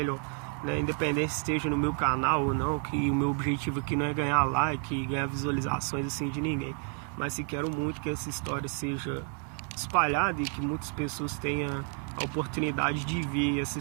Independente se esteja no meu canal ou não, que o meu objetivo aqui não é ganhar like, ganhar visualizações assim de ninguém, mas se quero muito que essa história seja espalhada e que muitas pessoas tenham a oportunidade de ver essa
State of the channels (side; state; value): left; quieter; 39.9 dB